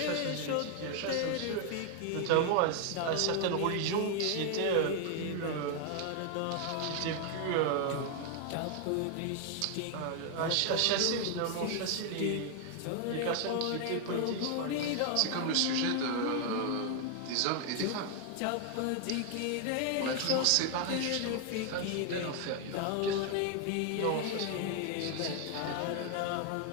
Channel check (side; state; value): both; different; correlation 0.00